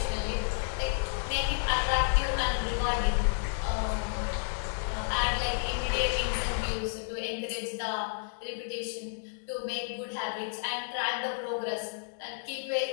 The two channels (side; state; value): right; silent; digital silence